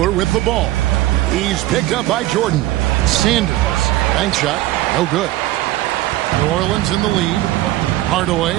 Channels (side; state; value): left; quieter; 16.1 dB